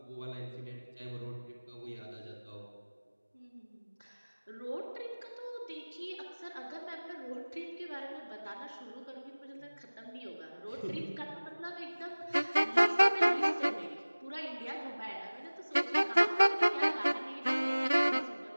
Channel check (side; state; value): both; inverted; correlation -1.00